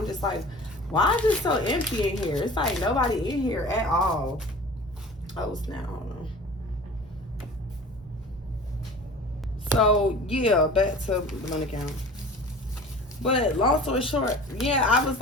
just like, Why is it so empty in here? It's like nobody in here at all. Oh, snap. Hold on. So, yeah, back to Dominican. But long story short, yeah, I was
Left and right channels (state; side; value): normal; both; correlation 0.41